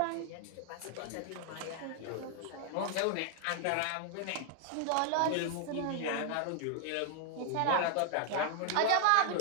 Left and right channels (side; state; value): both; different; correlation 0.00